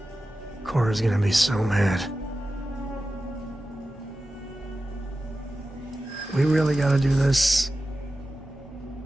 Cora's gonna be so mad. We really gotta do this?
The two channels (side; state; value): both; normal; correlation 0.94